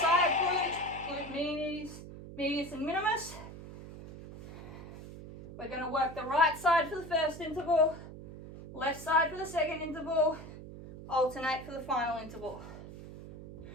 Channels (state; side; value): noise; right; hum, 13 dB below the sound